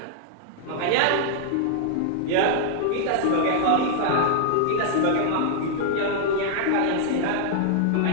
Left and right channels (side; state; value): both; different; correlation -0.01